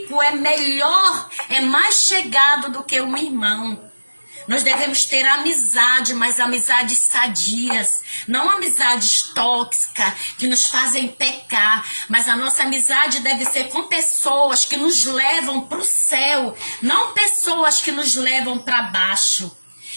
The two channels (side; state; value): both; inverted; correlation -1.00